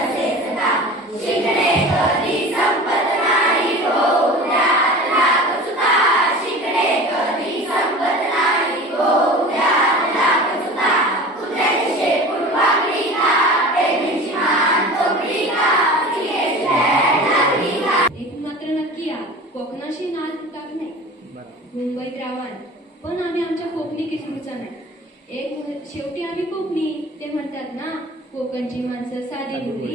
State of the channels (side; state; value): both; normal; correlation 0.37